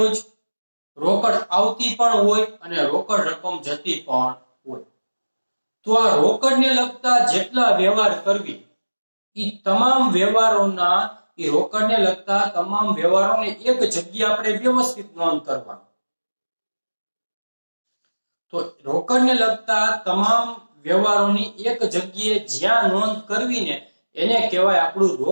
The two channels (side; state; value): both; inverted; correlation -1.00